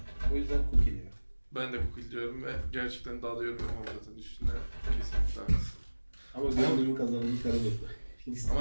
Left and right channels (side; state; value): both; inverted; correlation -1.00